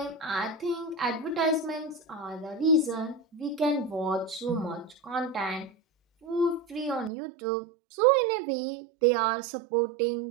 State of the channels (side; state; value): left; drops out; at 7.1 s